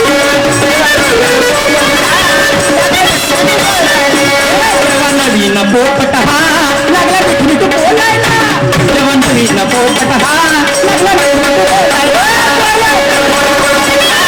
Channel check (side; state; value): both; identical; correlation 1.00